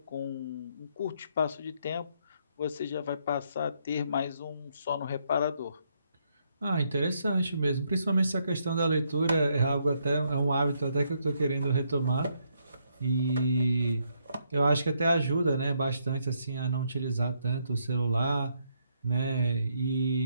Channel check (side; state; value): both; inverted; correlation -0.74